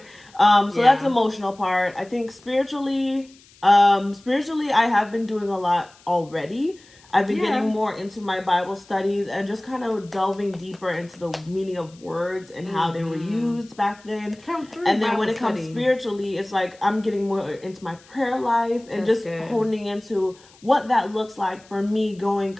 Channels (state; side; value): noise; left; hiss, 27 dB below the sound